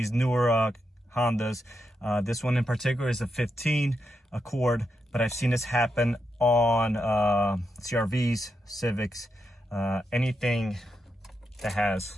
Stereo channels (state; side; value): normal; both; correlation 0.85